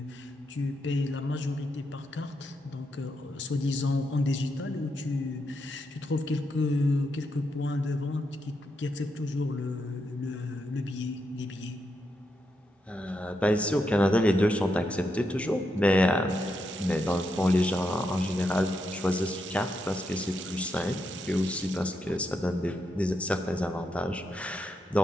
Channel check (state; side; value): normal; both; correlation 0.82